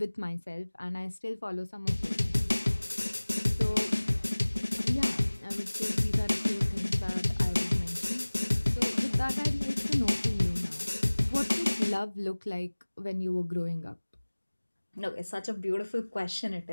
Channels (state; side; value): inverted; both; correlation -1.00